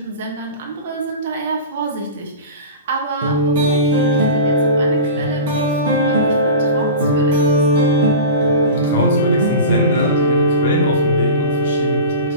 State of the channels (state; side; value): inverted; both; correlation -0.32